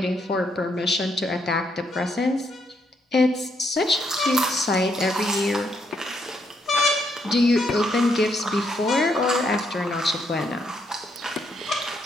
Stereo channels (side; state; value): both; normal; correlation 0.75